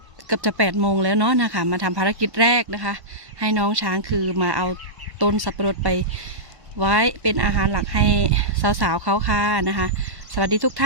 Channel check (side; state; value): left; late; 1.1 ms